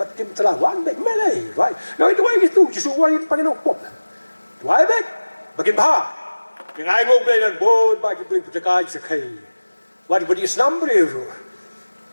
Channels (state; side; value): inverted; both; correlation -1.00